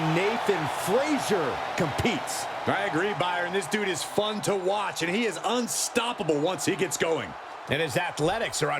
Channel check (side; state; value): both; identical; correlation 1.00